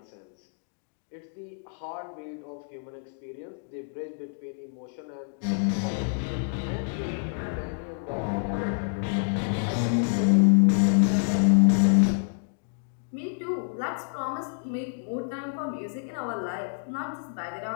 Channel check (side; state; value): right; silent; digital silence